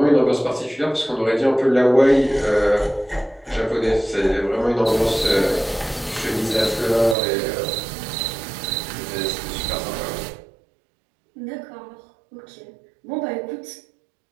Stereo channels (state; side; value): drops out; left; at 7.2 s